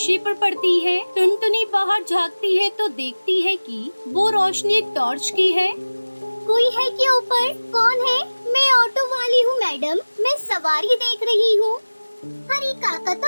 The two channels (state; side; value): inverted; both; correlation -1.00